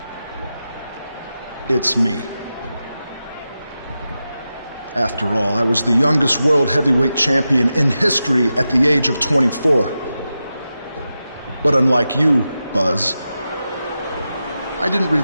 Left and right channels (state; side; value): inverted; both; correlation -0.91